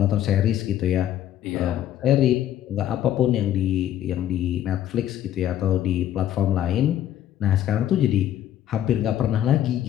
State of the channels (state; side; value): quieter; right; 11.5 dB